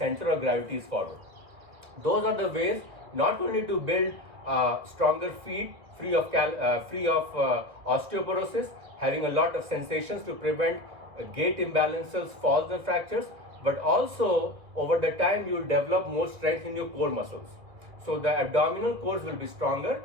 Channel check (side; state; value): left; late; 2.3 ms